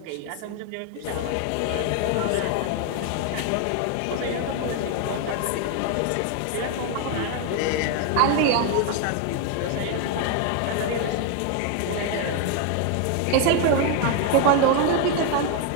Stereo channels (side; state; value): both; different; correlation 0.01